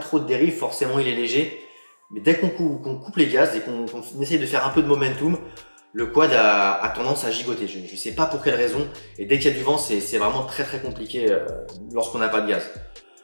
de dérive, forcément il est léger. Mais dès qu'on coupe les gaz et qu'on essaye de faire un peu de momentum, le quad a tendance à gigoter. Je ne sais pas pour quelle raison. Et dès qu'il y a du vent, c'est vraiment très compliqué lorsqu'on n'a pas de gaz.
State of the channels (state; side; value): inverted; both; correlation -1.00